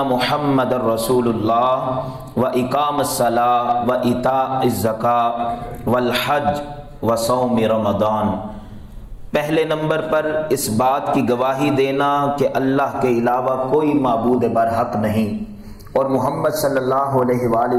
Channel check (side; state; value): both; identical; correlation 1.00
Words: محمد رسول اللہ واقام الصلاۃ وایتاء الزکاۃ والحج وصوم رمضان۔ پہلے نمبر پر اس بات کی گواہی دینا کہ اللہ کے علاوہ کوئی معبود برحق نہیں اور محمد صلی اللہ علیہ وآلہ